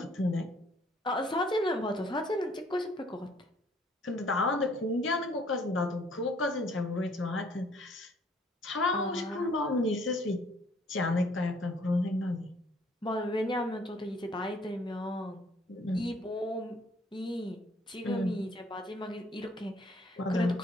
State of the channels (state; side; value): normal; both; correlation 0.61